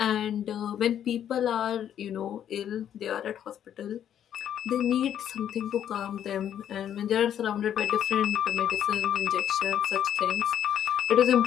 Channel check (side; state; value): right; quieter; 9.9 dB